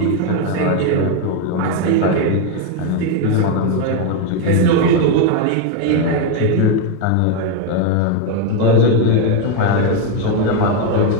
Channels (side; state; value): both; different; correlation 0.02